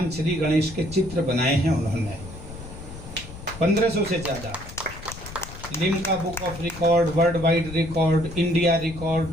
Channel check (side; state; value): left; noise; rumble, 13 dB below the sound